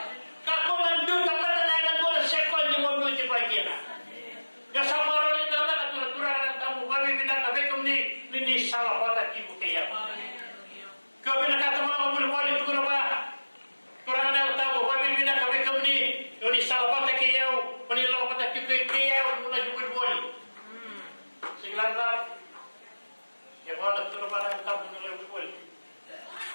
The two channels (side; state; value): both; inverted; correlation -1.00